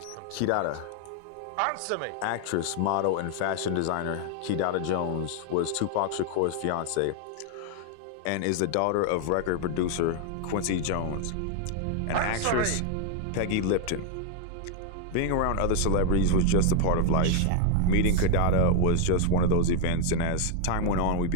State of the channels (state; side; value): different; both; correlation 0.00